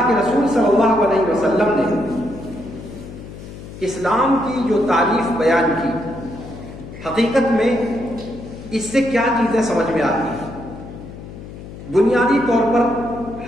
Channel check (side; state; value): left; noise; hum, 14 dB below the sound